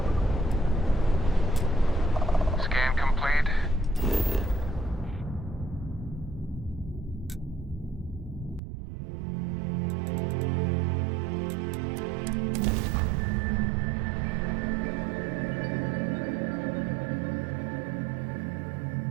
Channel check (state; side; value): drops out; left; at 8.6 s